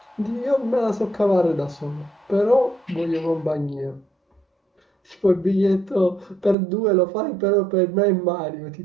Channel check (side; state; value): left; drops out; at 6.6 s